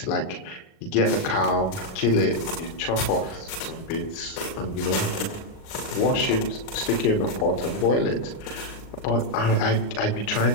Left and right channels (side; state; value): right; late; 38 ms